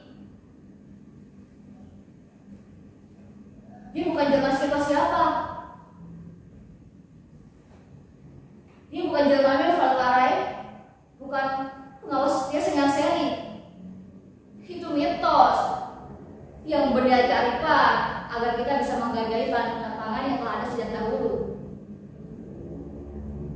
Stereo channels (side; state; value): both; identical; correlation 1.00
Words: Dia bukan jelmaan siapa-siapa. Dia bukan jelmaan Valkarai, bukan pengawas setia Sengal Seri. Itu mitos yang berdalih kearifan agar kita bisa menghargai bahan pangan yang telah ada sejak dahulu.